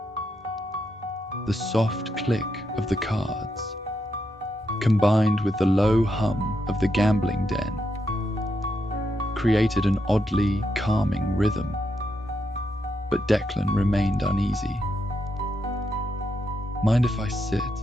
The soft click of the cards, combined with the low hum of the gambling den, created an oddly calming rhythm, but Declan remained uneasy. "Mind if I sit?"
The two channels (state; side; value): normal; both; correlation 0.82